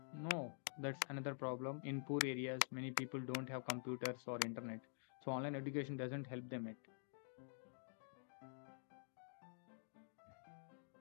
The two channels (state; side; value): silent; right; digital silence